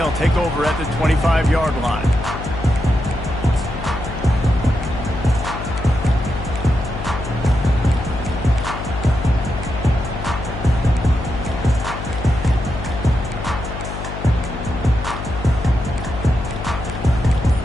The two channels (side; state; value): left; noise; hum, 8 dB below the sound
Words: take over at the 25-yard line.